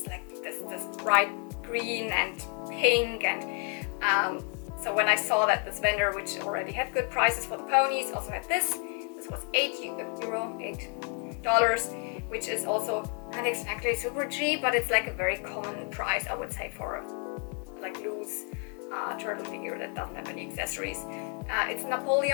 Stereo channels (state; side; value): quieter; right; 39.3 dB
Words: like this bright green and pink, and so when I saw that this vendor, which already had good prices for the ponies, also had this was $8, which is also not exactly super cheap, but it's like a very common price, I would say, for a like loose turtle figure that doesn't have any accessories. It's